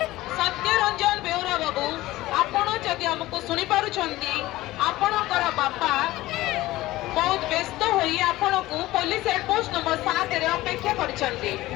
आपण जदि हमको सुनी पारुछंती आपणकर बापा बहुत व्यस्त होई आपण को पुलिस हेड पोस्ट नंबर 7 रे अपेक्षा करिसंती।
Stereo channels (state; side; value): quieter; right; 17.3 dB